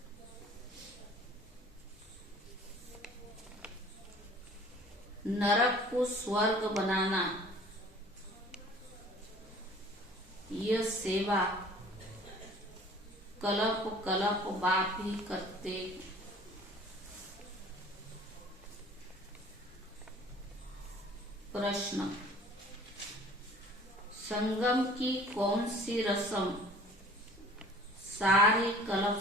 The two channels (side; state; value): both; normal; correlation 0.48